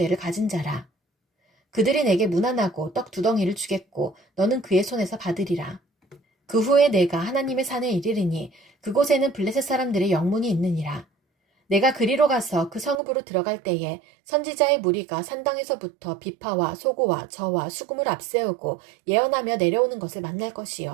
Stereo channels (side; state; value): left; drops out; at 13.0 s